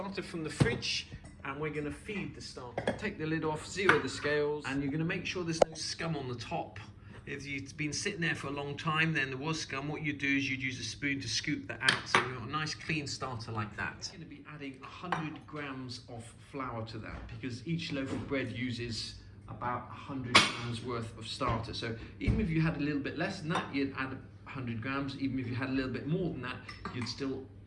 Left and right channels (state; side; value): identical; both; correlation 1.00